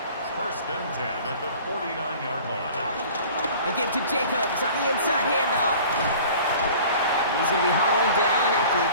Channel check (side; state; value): both; inverted; correlation -0.45